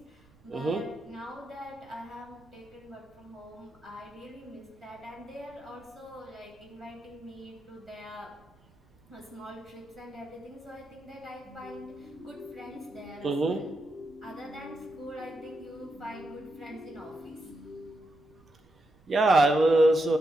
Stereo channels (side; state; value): right; noise; rumble, 29 dB below the sound